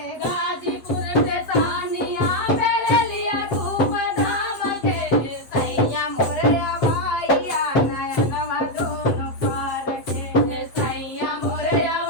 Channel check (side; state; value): right; late; 8.0 ms